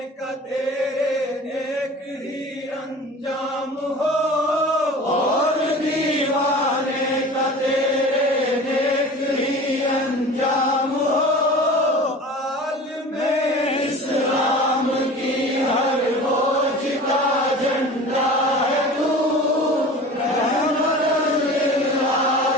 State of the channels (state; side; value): normal; both; correlation 0.39